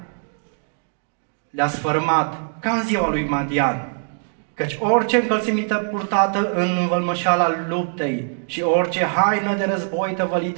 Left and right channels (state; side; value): silent; left; 64 dB below the other